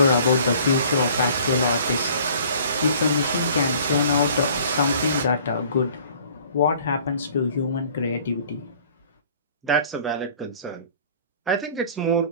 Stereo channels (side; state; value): both; inverted; correlation -0.51